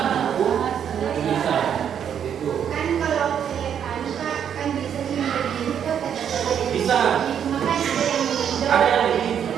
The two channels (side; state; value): left; quieter; 8.6 dB